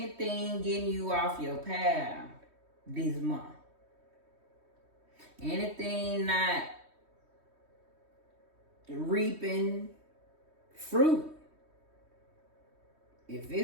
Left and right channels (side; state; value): left; late; 3.2 ms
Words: getting you off your path this month. Anything not reaping fruit. If